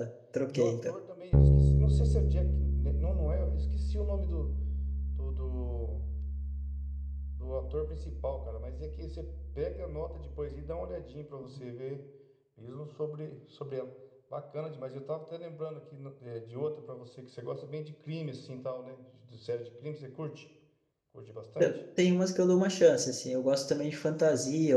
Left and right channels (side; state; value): both; identical; correlation 1.00